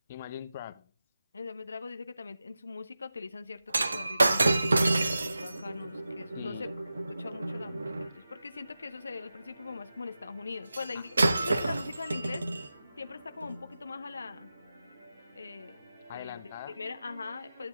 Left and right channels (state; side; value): inverted; both; correlation -0.92